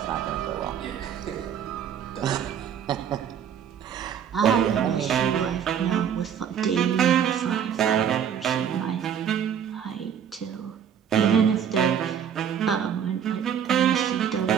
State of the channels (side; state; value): left; quieter; 8.5 dB